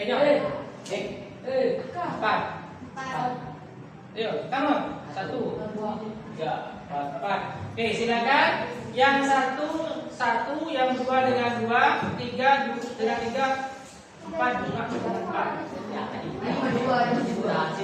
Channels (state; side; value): identical; both; correlation 1.00